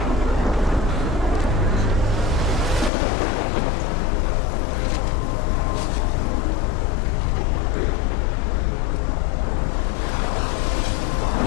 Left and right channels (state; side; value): drops out; right; at 2.9 s